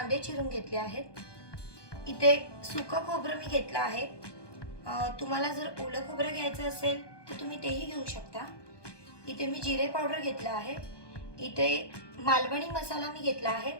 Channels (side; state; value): right; late; 1.2 ms